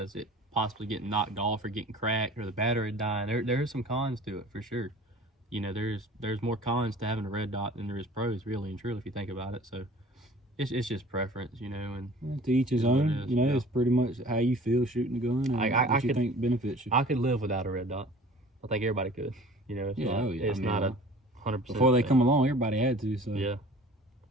is it possibly getting knocked off or getting cracked or the battery dying. There's some cons to it for sure. You know, there's more cons to having a red dot than there is pros, really and truly, if you think about it. So it's just preference, you know. And to each his own. You know, it's pretty much how you feel shooting the gun and what you think benefits you. I could live without a red dot. I think everybody could. You know, it's not a 100%. Before they come along, everybody had to. So yeah.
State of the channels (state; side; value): normal; both; correlation 0.46